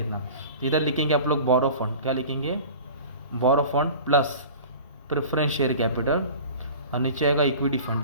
तो इधर लिखेंगे आप लोग बोरो फंड। क्या लिखेंगे, borrow fund plus preference share capital, और नीचे आएगा इक्विटी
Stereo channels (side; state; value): both; inverted; correlation -0.40